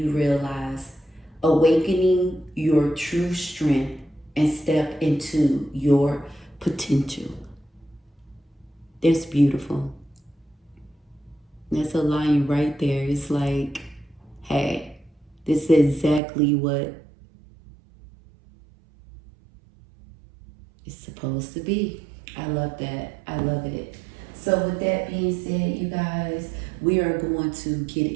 realize. Awakening your true strength and step into your potential. That's beautiful. That's a line right there. It's like, hey, this is exactly what it's supposed to be. I love that. I love it. So with that being said, you guys, we are going to get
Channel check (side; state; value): left; drops out; at 16.2 s